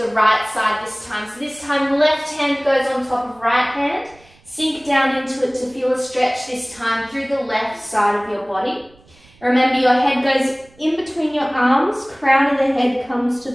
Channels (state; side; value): noise; right; rumble, 28 dB below the sound